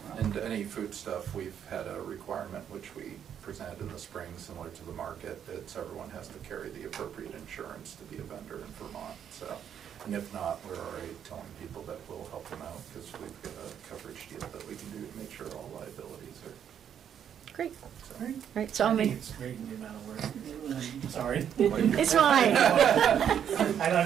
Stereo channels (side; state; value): left; quieter; 8.9 dB